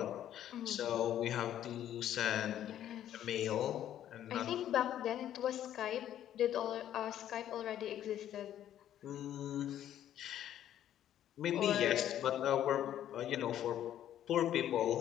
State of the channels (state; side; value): quieter; right; 11.3 dB